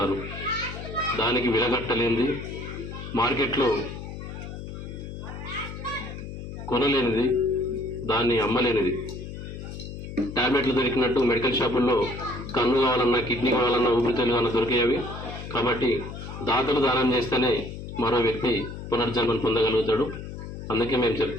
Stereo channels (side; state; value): left; noise; hum, 9 dB below the sound